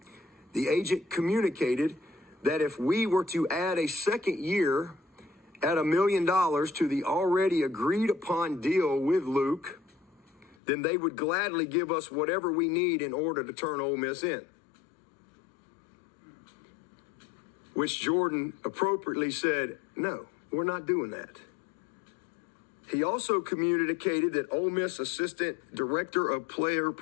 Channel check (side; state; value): right; drops out; at 10.6 s